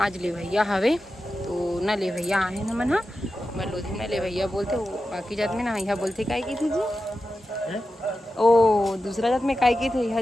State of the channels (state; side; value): normal; both; correlation 0.92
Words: आज लेवैया हवे, तो ना लेवैया आए ना मन मैं लोधी में लेवैया बोलते, बाकी जात में ना यहाँ बोलते काय की थी जी ओ दूसरा जात में काय की